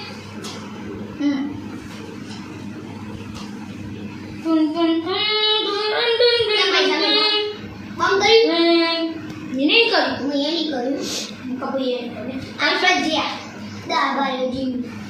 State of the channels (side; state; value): both; identical; correlation 1.00